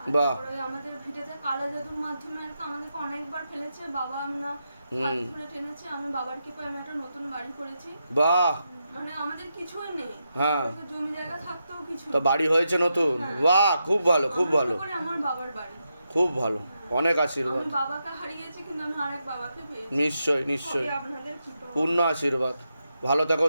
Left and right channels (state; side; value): inverted; both; correlation -0.85